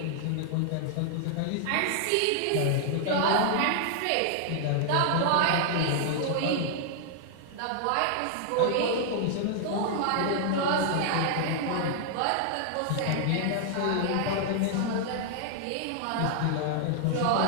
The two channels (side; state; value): both; different; correlation -0.01